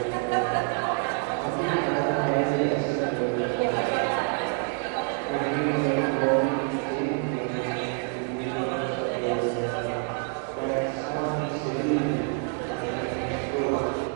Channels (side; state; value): left; quieter; 38.9 dB